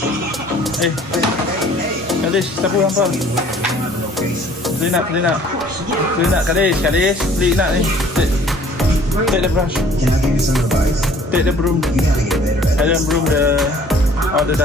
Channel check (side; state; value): both; normal; correlation 0.54